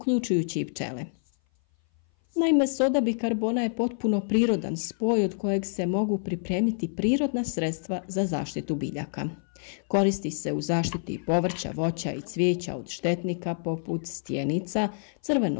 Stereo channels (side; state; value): right; silent; 57 dB below the other